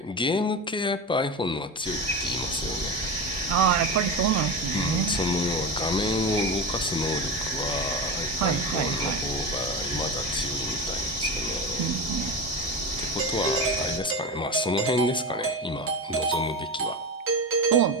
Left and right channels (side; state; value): both; normal; correlation 0.23